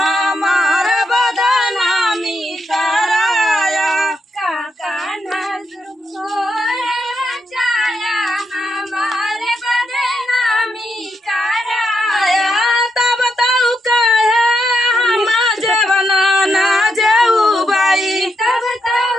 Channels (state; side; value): normal; both; correlation 0.81